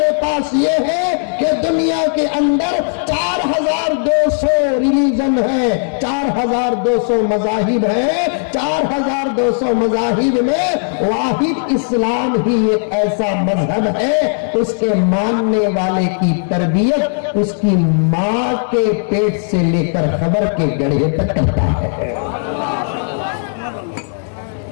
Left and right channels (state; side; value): silent; right; digital silence